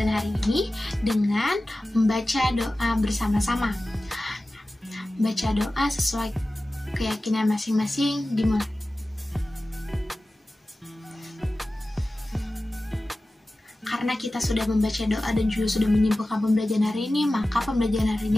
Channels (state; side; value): normal; both; correlation 0.96